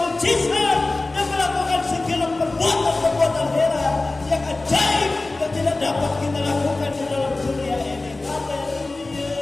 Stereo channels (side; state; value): right; quieter; 3.2 dB